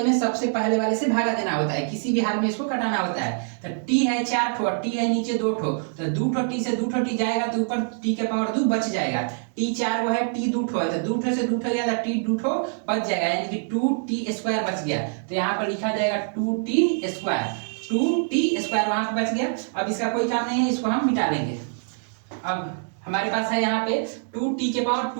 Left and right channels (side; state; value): left; silent; 62 dB below the other